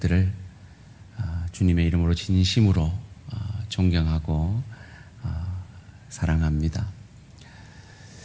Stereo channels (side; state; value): both; identical; correlation 1.00